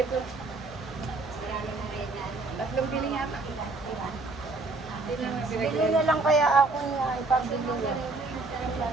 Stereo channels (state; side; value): quieter; left; 3.4 dB